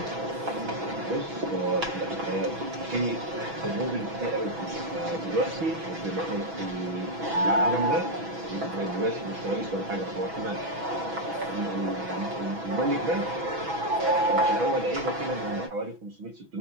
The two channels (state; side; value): late; left; 6.1 ms